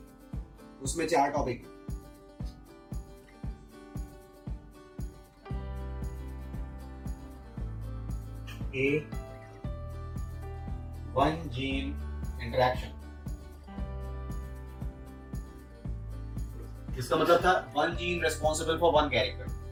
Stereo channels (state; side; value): identical; both; correlation 1.00